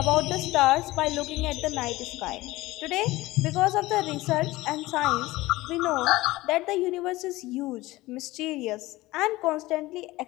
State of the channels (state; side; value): quieter; right; 19.0 dB